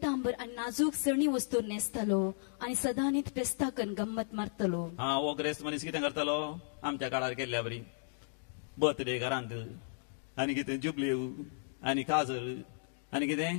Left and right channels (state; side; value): silent; right; digital silence